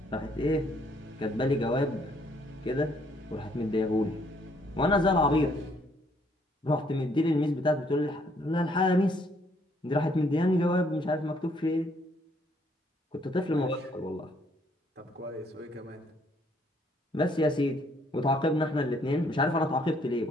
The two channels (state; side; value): normal; both; correlation 0.67